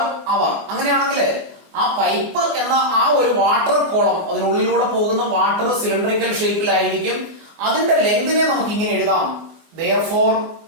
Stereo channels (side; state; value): left; late; 24 ms